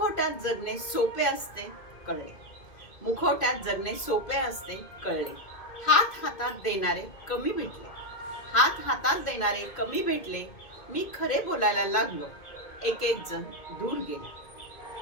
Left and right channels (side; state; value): right; late; 2.1 ms